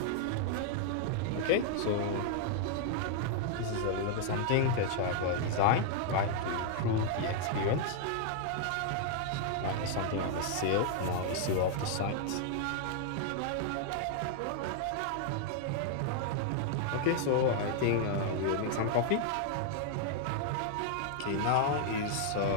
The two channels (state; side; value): different; both; correlation 0.00